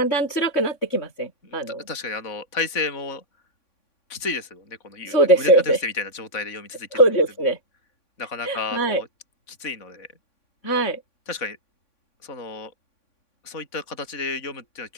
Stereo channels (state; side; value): late; right; 3.5 ms